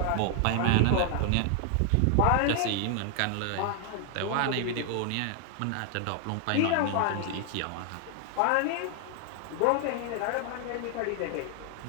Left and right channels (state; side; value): different; both; correlation 0.00